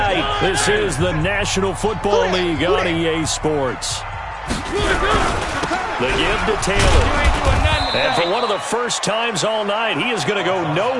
This is the National Football League on EA Sports. The give to Taylor. And for one of the first times all night, he is going to go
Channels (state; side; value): identical; both; correlation 1.00